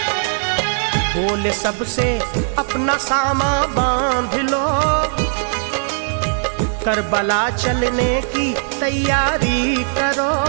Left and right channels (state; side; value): silent; left; digital silence